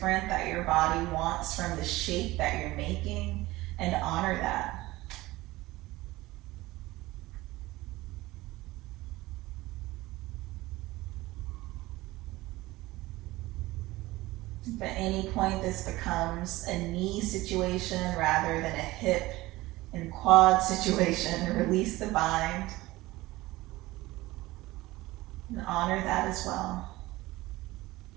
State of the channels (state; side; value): quieter; left; 19.0 dB